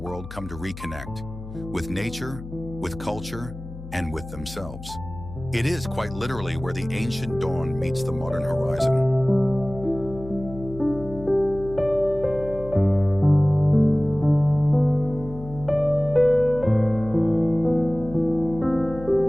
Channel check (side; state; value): left; noise; hum, 13 dB below the sound